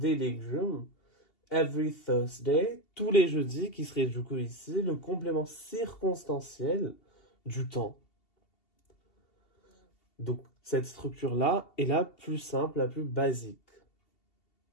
légumes. Every Thursday, tous les jeudis, qui serait du coup ici le complément circonstanciel du temps. Donc, cette structure-là est la plus simple, la plus basique.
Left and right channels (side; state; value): right; late; 2.7 ms